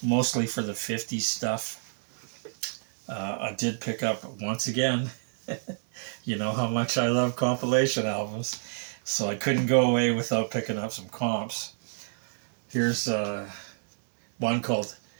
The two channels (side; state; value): left; silent; 59 dB below the other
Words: mostly for the 50s stuff. I did pick up, once again, you know how much I love compilation albums. So I couldn't go away without picking up some comps. Here's one called